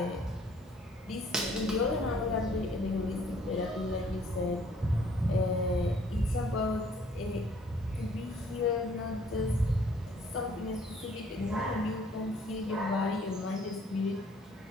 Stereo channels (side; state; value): both; normal; correlation 0.60